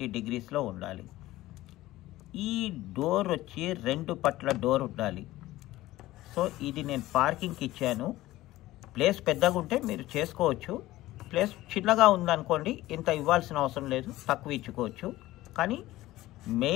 డిగ్రీస్లో ఉండాలి. ఈ డోర్ వచ్చి 2 పట్ల డోర్ ఉండాలి. సో ఇది నేను పార్కింగ్కి ఇచ్చాను. ప్లేస్ పెద్దగా ఉంటే మీరు చేసుకోవచ్చు. ప్లేస్ చిన్నగా ఉందనుకోండి, ఇంత ఇవ్వాల్సిన అవసరం లేదు, తక్కువ ఇచ్చుకోవచ్చు. కానీ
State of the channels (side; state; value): right; quieter; 16.6 dB